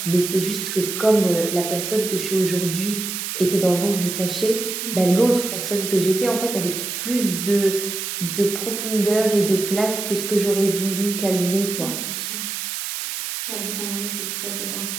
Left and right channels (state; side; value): noise; right; hiss, 5 dB below the sound